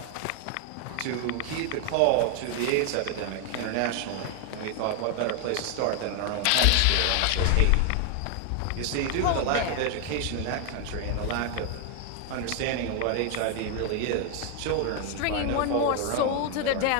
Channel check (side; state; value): both; different; correlation 0.00